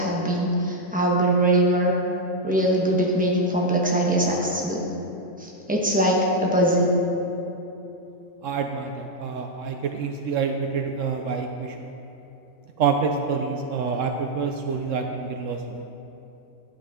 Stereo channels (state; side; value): normal; both; correlation 0.00